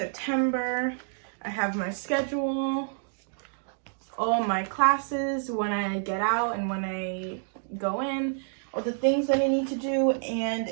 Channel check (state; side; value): silent; left; digital silence